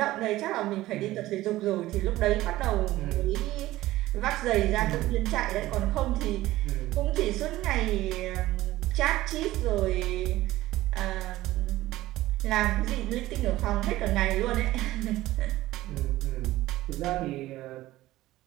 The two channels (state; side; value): quieter; left; 16.5 dB